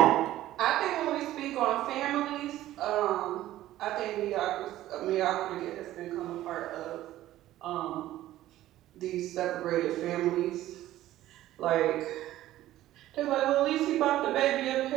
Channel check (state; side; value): quieter; left; 14.4 dB